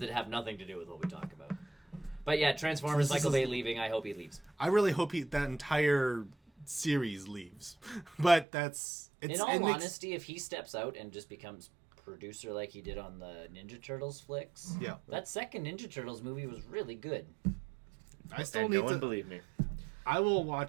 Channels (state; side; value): drops out; left; at 8.5 s